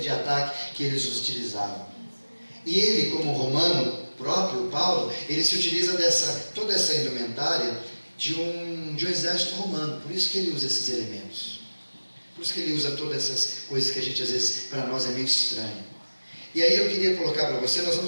ataque que eles utilizavam. E ele, como romano próprio, Paulo, ele se utiliza toda essa indumentária de um exército romano, por isso que ele usa esses elementos, por isso que ele usa todas essas coisas que a gente às vezes, para nós é meio estranho. E aí eu queria colocar para você, nós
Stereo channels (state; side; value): inverted; both; correlation -1.00